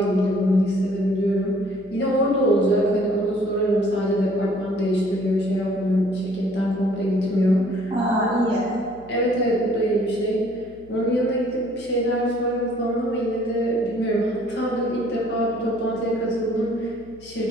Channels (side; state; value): left; noise; hum, 24 dB below the sound